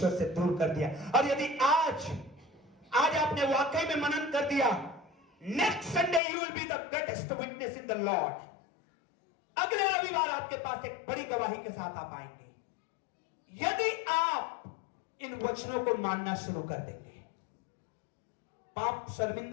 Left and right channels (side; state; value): right; drops out; at 6.2 s